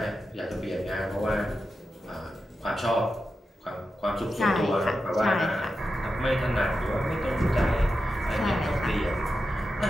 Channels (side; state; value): both; normal; correlation 0.90